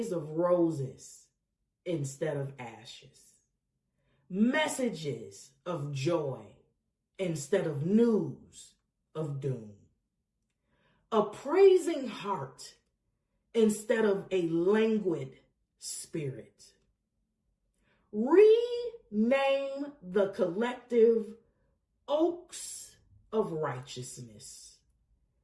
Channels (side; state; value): both; identical; correlation 1.00